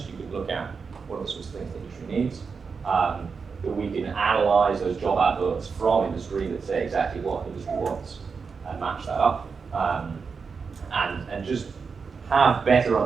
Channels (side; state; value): left; quieter; 5.3 dB